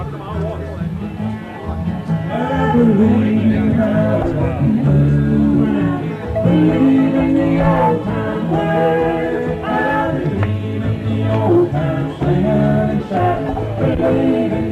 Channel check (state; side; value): identical; both; correlation 1.00